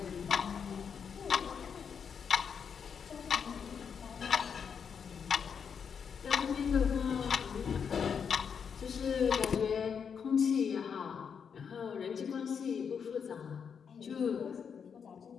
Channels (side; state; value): right; quieter; 6.8 dB